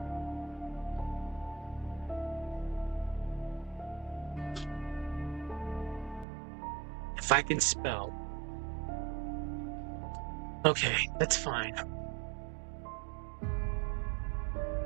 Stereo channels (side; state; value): left; drops out; at 6.2 s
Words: If I can spell. Okay, that's fine.